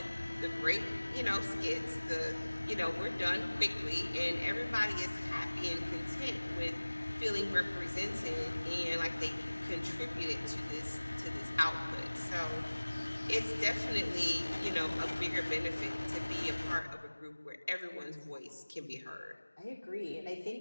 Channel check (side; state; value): both; inverted; correlation -1.00